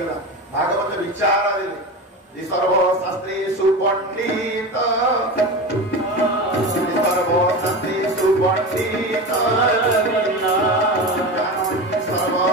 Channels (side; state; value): both; normal; correlation 0.25